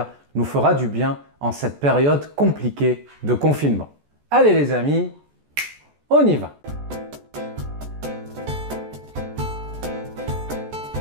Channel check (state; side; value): late; left; 14 ms